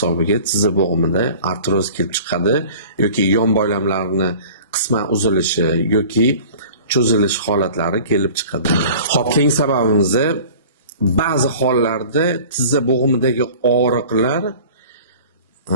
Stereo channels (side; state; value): both; inverted; correlation -0.43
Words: tizza bo'g'imida artroz kelib chiqadi yoki yon boylamlarning qisman uzilishi yoki cho'zilish holatlari kelib chiqadi. Xo'p, keyingi sababimiz ba'zi hollarda tizza bo'g'imidagi og'riqlar